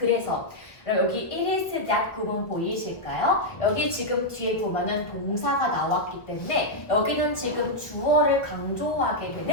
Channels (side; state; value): right; late; 1.2 ms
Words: 여기 it is that 구문 보이실까요? 여기 지금 뒤에 보면은 동사가 나왔기 때문에 여기는 지금 주어를 강조하게